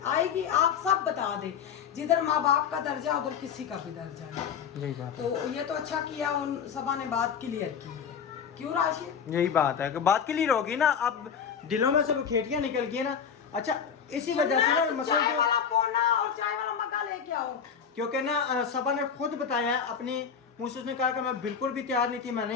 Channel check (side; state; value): right; quieter; 7.2 dB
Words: आएगी, आप सब बता दे, जिधर माँ बाप का दर्जा उधर किसी का भी दर्जा नहीं। यही बात तो ये तो अच्छा किया उन सबा ने बात क्लियर की है, क्यों राशिद? यही बात है कि बात क्लियर होगी ना, अब दिलों में से वो खेटियां निकल गई ना। अच्छा, इसी वजह से ना मसला चाय वाला पोना और चाय वाला मग्गा लेके आओ, क्योंकि ना सबा ने खुद बताया अपनी मुँह से, उसने कहा कि मैं बिल्कुल भी तैयार नहीं थी, मैं